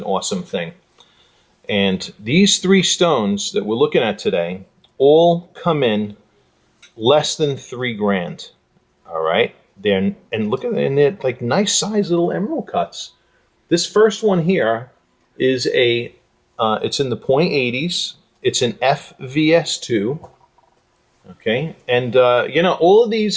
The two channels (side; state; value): both; identical; correlation 1.00